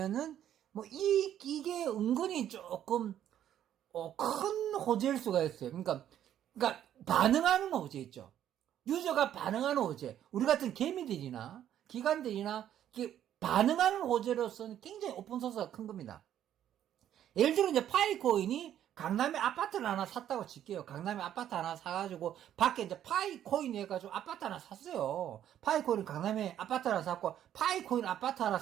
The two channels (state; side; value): quieter; left; 10.8 dB